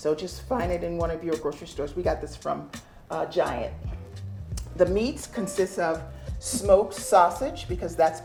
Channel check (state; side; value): identical; both; correlation 1.00